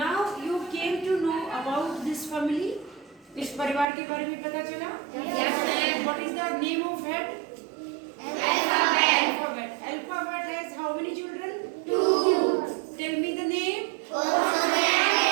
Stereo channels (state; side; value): drops out; left; at 3.9 s